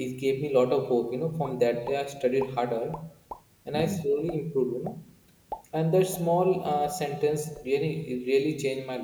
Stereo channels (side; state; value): both; identical; correlation 1.00